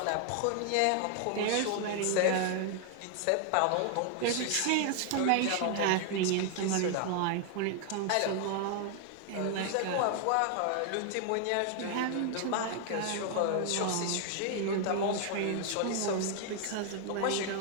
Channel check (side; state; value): both; different; correlation 0.00